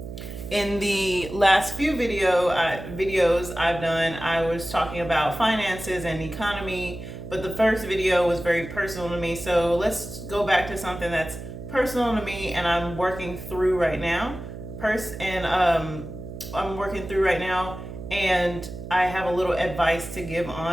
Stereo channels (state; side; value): noise; right; hum, 10 dB below the sound